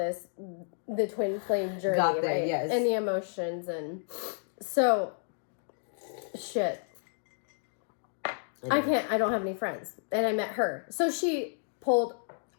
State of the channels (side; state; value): right; silent; digital silence